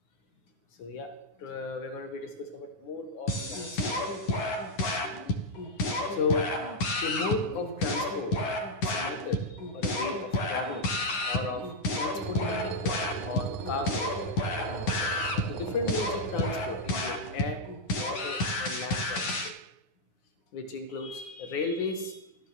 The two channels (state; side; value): late; right; 9.7 ms